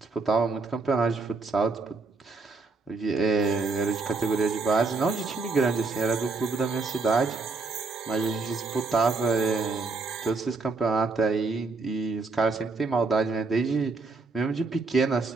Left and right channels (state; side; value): quieter; left; 3.8 dB